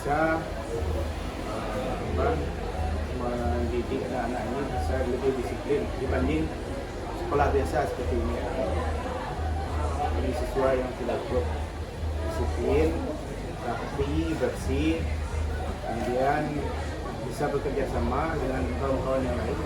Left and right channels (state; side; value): identical; both; correlation 1.00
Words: mendidik anak-anak ini bisa lebih disiplin dibanding sekolah biasa seperti ini. Jadi siswa yang tidak cukup disiplin, rapi, bersih, kemudian bisa bekerja sama dengan kawan-kawan yang lain.